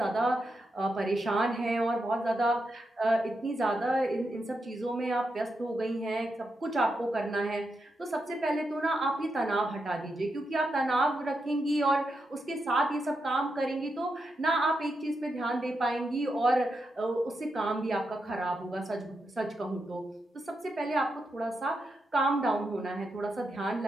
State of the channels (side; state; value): both; normal; correlation 0.85